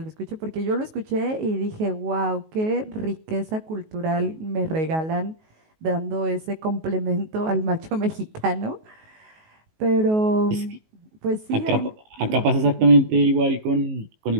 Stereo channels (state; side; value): late; left; 19 ms